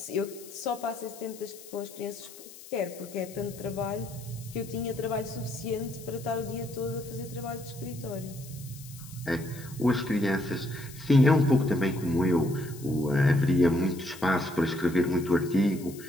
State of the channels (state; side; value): noise; left; hiss, 18 dB below the sound